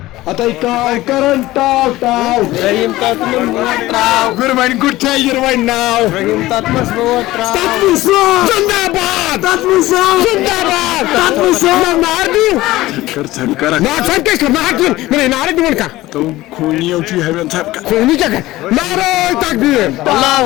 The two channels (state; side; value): quieter; right; 17.4 dB